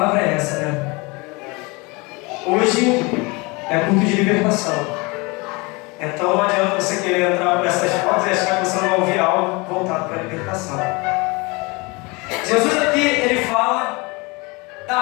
é essa, né? Hoje é culto de libertação. Então não adianta você querer entrar por essas portas e achar que você não vai ouvir algo voltado para a libertação. Jesus aqui, ele fala da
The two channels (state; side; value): quieter; right; 26.6 dB